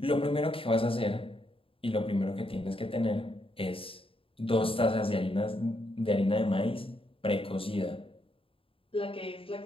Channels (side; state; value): right; late; 0.26 ms